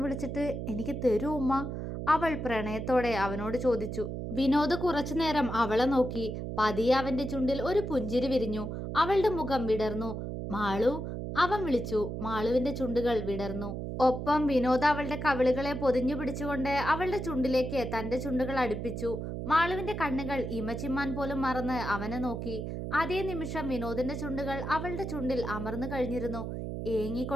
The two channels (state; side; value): noise; right; hum, 5 dB below the sound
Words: വിളിച്ചിട്ട് എനിക്ക് തരൂ ഉമ്മ? അവൾ പ്രണയത്തോടെ അവനോട് ചോദിച്ചു. വിനോദ് കുറച്ചു നേരം അവളെ നോക്കി. പതിയെ അവന്റെ ചുണ്ടിൽ ഒരു പുഞ്ചിരി വിരിഞ്ഞു. അവളുടെ മുഖം വിടർന്നു. മാളു, അവൻ വിളിച്ചു. മാളുവിന്റെ ചുണ്ടുകൾ വിടർന്നു. ഒപ്പം വിനോദ് അവളുടെ കവിളുകളെ പൊതിഞ്ഞു പിടിച്ചുകൊണ്ട് അവളുടെ ചുണ്ടിലേക്ക് തന്റെ ചുണ്ടുകൾ അടുപ്പിച്ചു. മാളുവിന്റെ കണ്ണുകൾ ഇമച്ചിമ്മാൻ പോലും മറന്ന് അവനെ നോക്കി. അതേ നിമിഷം വിനോദിന്റെ ചുണ്ടുകൾ അവളുടെ ചുണ്ടിൽ അമർന്നു കഴിഞ്ഞിരുന്നു.